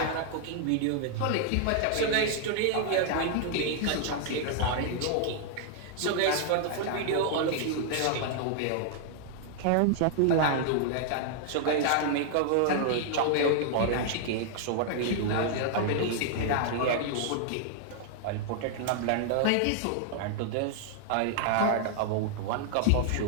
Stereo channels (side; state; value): both; different; correlation 0.00